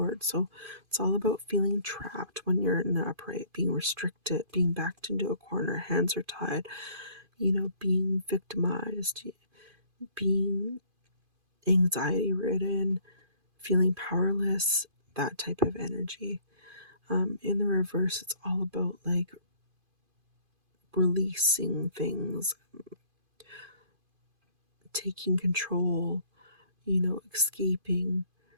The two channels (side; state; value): left; late; 2.5 ms